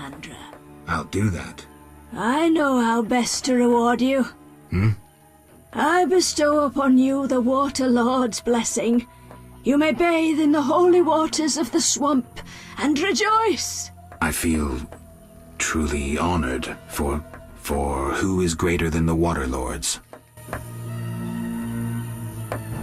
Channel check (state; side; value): identical; both; correlation 1.00